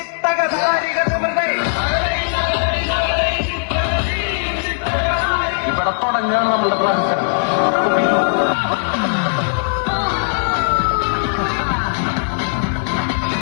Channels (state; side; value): silent; right; 67 dB below the other